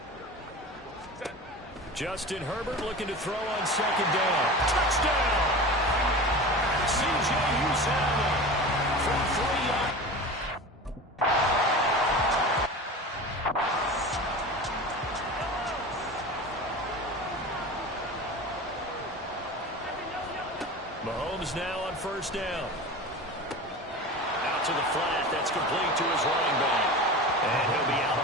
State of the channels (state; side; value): normal; both; correlation 0.32